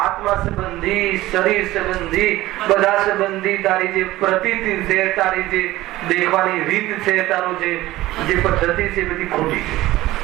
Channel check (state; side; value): quieter; left; 16.9 dB